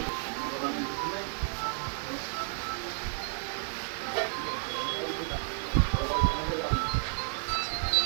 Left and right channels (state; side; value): silent; left; 57 dB below the other